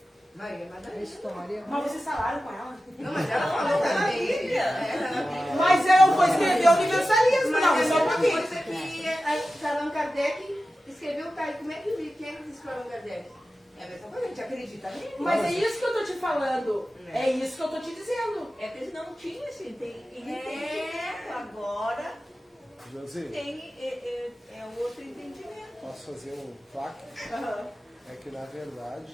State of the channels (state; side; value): normal; both; correlation 0.94